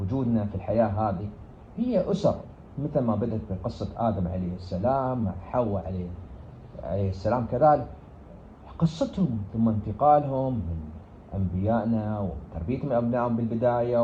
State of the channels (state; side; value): identical; both; correlation 1.00